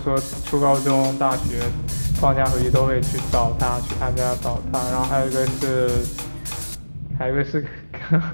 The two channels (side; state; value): both; inverted; correlation -1.00